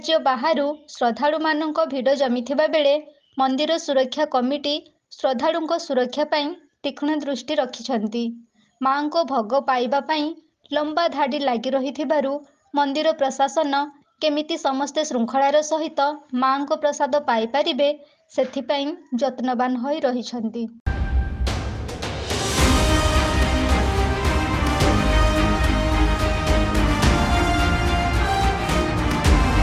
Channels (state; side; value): identical; both; correlation 1.00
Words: बाहरु श्रद्धालु मानक भिड़ जमिथिबा बेले मंदिर सुरक्षा कमिटी श्रद्धालुंक सुरक्षा पाई तीक्ष्ण दृष्टि रखिछंती। मां को भोग पाइबा पाई लंबा धाड़ी लागी रहिथिबारु मंदिर प्रशासन केमिति समस्ते श्रृंखलार सहित मां को प्रसाद पाई परिबे सेथिपाई यत्नवान होई रहिछंती।